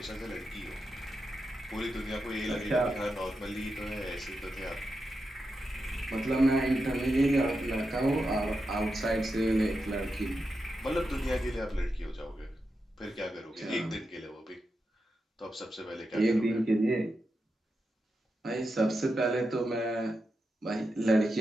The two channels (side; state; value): both; normal; correlation 0.88